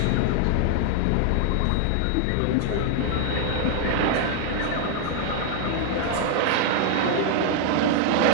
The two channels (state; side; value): different; both; correlation 0.00